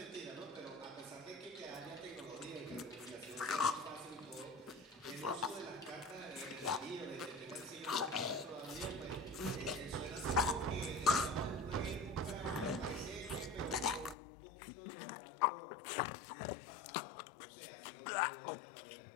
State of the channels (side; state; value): right; drops out; at 14.2 s